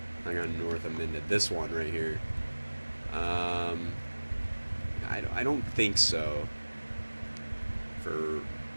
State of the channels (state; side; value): inverted; both; correlation -1.00